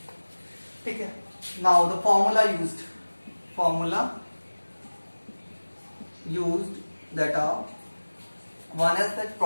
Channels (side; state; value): both; inverted; correlation -1.00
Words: ठीक है. Now the formula used that are one is that